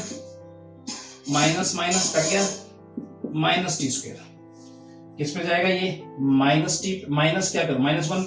minus minus cut गया माइनस टी स्क्वायर, किस पे जाएगा ये माइनस टी, माइनस क्या करो -1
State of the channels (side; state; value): both; identical; correlation 1.00